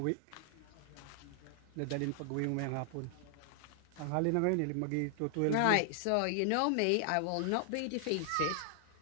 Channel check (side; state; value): both; different; correlation 0.00